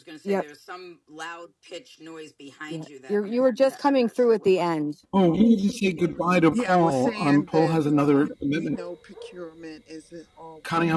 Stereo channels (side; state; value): both; identical; correlation 1.00